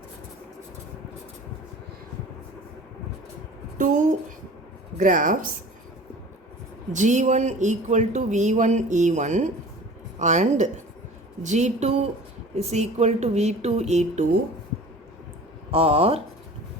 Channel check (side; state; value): both; normal; correlation 0.42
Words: Two graphs G1 equal to V1 E1 and G2 is equal to V2 E2 are